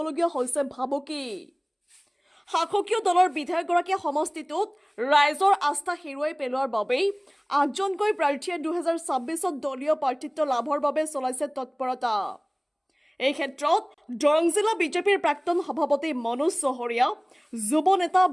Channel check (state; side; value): identical; both; correlation 1.00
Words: হৈছে ভাবুকি। শাসকীয় দলৰ বিধায়কগৰাকীয়ে সমষ্টিটোত ৰাইজৰ আস্থা হেৰুৱাই পেলোৱাৰ বাবেই ৮জনকৈ প্ৰাৰ্থীয়ে ২০২৬ত দলীয় প্ৰাৰ্থিত্ব লাভৰ বাবে চলাইছে তৎপৰতা। এই ক্ষেত্ৰত দৰং জিলা বিজেপিৰ প্ৰাক্তন সভাপতি মনোজ চহৰীয়া, যুৱ নেতা